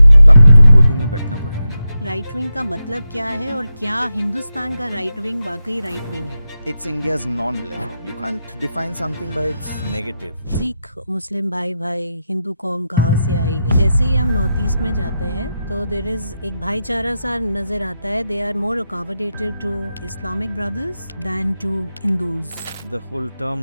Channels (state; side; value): inverted; both; correlation -0.89